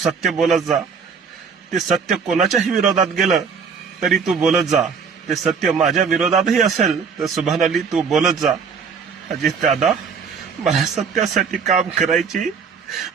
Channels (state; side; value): quieter; left; 6.0 dB